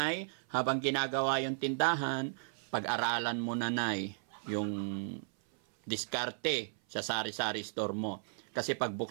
habang ginagawa yung tindahan, pag-aralan mo nanay yung diskarte sa sari-sari store mo. Kasi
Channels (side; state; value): left; silent; 54 dB below the other